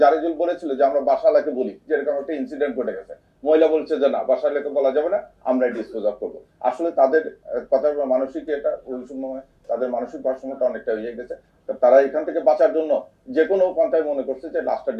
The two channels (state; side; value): identical; both; correlation 1.00